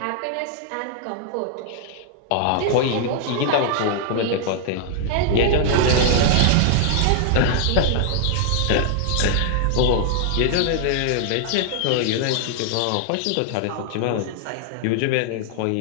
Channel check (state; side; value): different; both; correlation -0.01